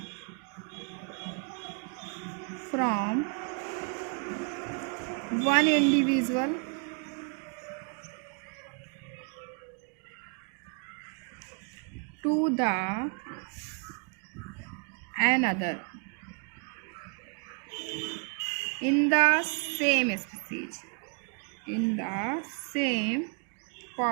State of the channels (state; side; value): quieter; left; 38.6 dB